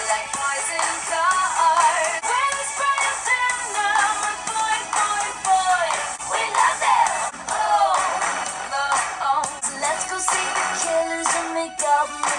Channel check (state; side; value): identical; both; correlation 1.00